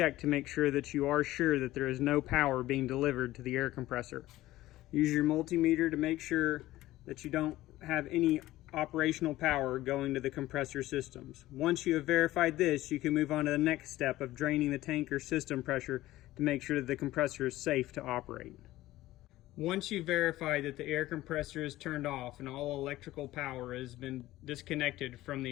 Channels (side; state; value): right; quieter; 16.2 dB